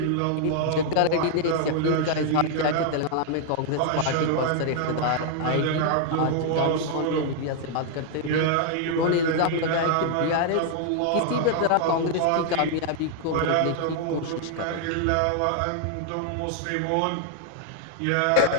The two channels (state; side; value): different; both; correlation 0.00